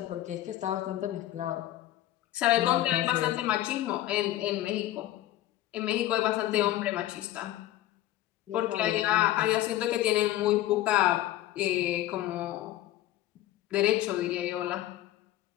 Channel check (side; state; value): right; quieter; 14.3 dB